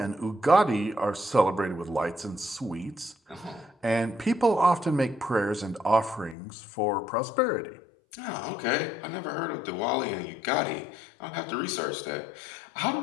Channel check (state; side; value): drops out; right; at 6.4 s